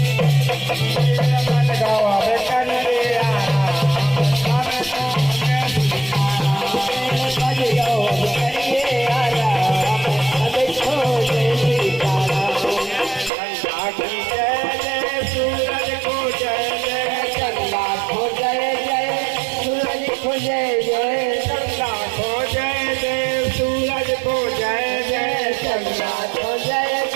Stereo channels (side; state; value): left; drops out; at 13.3 s